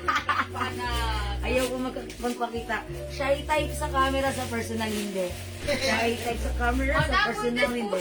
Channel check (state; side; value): identical; both; correlation 1.00